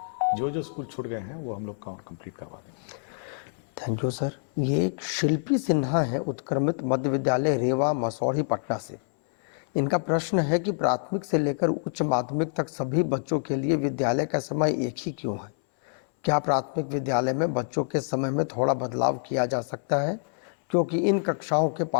तो जो स्कूल छूट गए हैं वो हम लोग कंप्लीट करवा देंगे। Thank you sir. ये एक शिल्पी सिन्हा है, उत्क्रमित मध्य विद्यालय रेवा मसौढ़ी पटना से। इनका प्रश्न है कि प्राथमिक से लेकर उच्च माध्यमिक तक सभी बच्चों के लिए विद्यालय का समय एक ही क्यों है? क्या प्राथमिक विद्यालय में बच्चों के समय में थोड़ा बदलाव किया जा सकता है, क्योंकि इन कक्षाओं के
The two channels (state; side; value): silent; right; 60 dB below the other